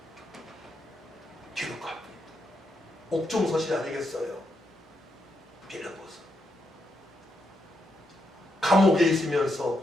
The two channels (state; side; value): normal; both; correlation 0.81